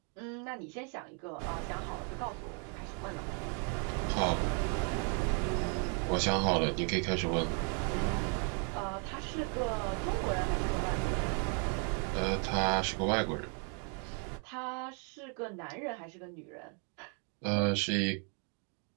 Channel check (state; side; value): quieter; left; 39.4 dB